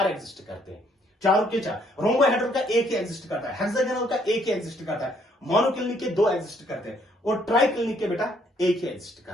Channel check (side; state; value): both; normal; correlation 0.67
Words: एग्जिस्ट करते हैं, चारों के 4। रोम्बोहेड्रल का 1 ही एग्जिस्ट करता है, हेक्सागोनल का 1 ही एग्जिस्ट करता है, मोनोक्लिनिक के 2 एग्जिस्ट करते हैं और ट्राइक्लिनिक के बेटा 1 ही एग्जिस्ट